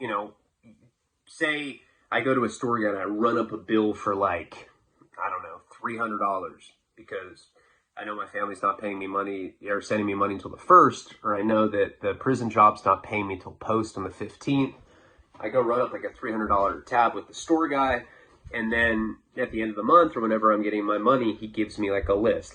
know, say I go to a store again, I run up a bill for like, I don't know, $300 because I know my family's not paying me money or sending me money until the 1st, or I know that the prison job's not paying me till post on the 15th. I go run up like a $300 tab with the store guy, and then at the end of the month or whenever I'm getting my money, he gives me like a list,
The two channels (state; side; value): identical; both; correlation 1.00